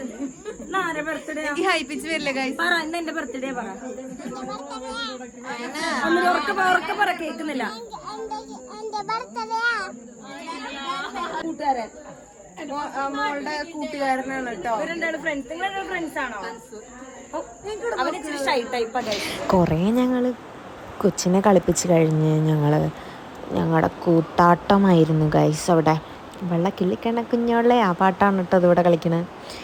ആരെ ബർത്ത്ഡേ ഹൈപ്പിച്ച് വരില്ല ഗൈസ്. പറ ഇന്ന് എന്റെ ബർത്ത്ഡേ പറ. ഉറക്കെ പറ, കേൾക്കുന്നില്ല. കൂട്ടുകാരൻ മോളുടെ കൂട്ടുകാരനാണ് കേട്ടോ. ഇവരെന്താണ് ഫ്രണ്ട്സ്? നിങ്ങളുടെ ഫ്രണ്ട്സ് ആണോ? അവനിച്ചിരി ഷൈ ടൈപ്പാണ്. കുറേ ഞങ്ങൾ കൊച്ചിനെ കളിപ്പിച്ച് കഴിഞ്ഞ് ഞങ്ങളുടെ കൂത്താട്ടമായിരുന്നു ഗൈസ്. അവിടെ വെള്ളക്കിള്ളിക്കണ കുഞ്ഞോളെ ആ പാട്ടാണ് കേട്ടോ അതിവിടെ കളിക്കണത്.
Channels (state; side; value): identical; both; correlation 1.00